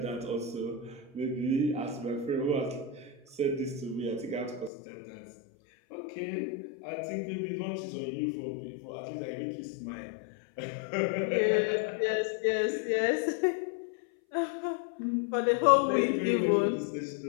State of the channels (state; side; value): drops out; right; at 4.7 s